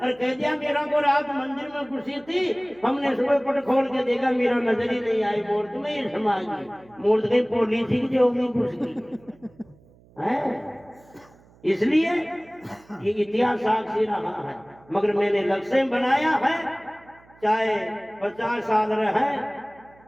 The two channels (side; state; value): right; noise; hum, 28 dB below the sound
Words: कह दिया मेरा को रात मंदिर में घुसी थी, हमने सुबह पट खोल के देखा मेरा नजर ही नहीं आई, मूर्ति में ही समा गई। मूर्ति कहीं पोली थी जो में घुस गई है। इसलिए ये इतिहास साक्षी रहा है। मगर मैंने लक्ष्य बनाया है, चाहे 50 साल रहे